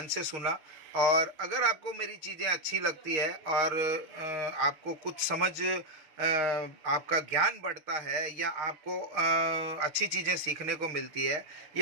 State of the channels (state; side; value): late; left; 6.4 ms